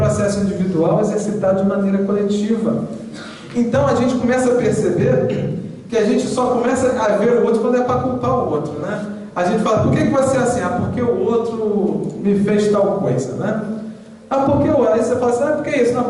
individual exercitado de maneira coletiva. Então a gente começa a perceber que a gente só começa a ver o outro quando é para culpar o outro, né? A gente fala, por que você é assim? Ah, porque o outro me fez tal coisa, né? Ah, porque o outro? Aí você fala assim, ah, por que isso? Não,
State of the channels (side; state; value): both; identical; correlation 1.00